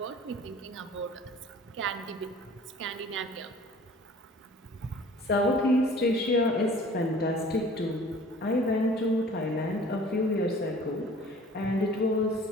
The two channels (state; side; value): normal; both; correlation 0.49